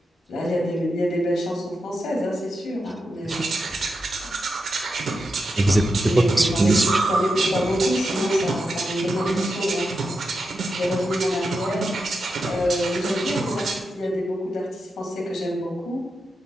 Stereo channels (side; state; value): both; normal; correlation 0.87